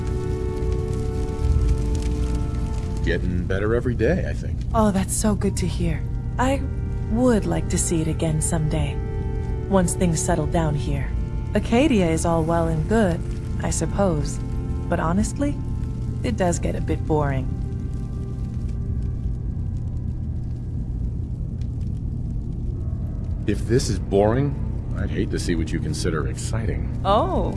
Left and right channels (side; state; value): both; identical; correlation 1.00